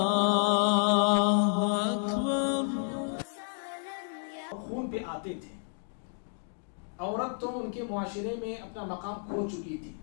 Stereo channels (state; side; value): silent; right; 57 dB below the other